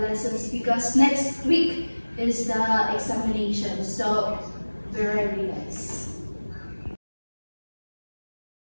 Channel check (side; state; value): both; inverted; correlation -1.00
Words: lessons because next week is the examination. So, be ready, guys.